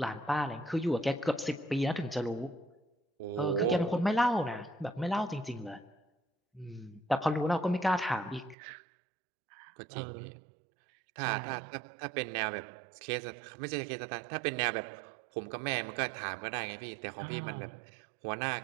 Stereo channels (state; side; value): drops out; left; at 8.6 s